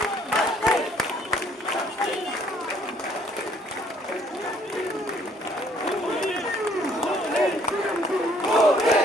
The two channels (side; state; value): both; normal; correlation 0.62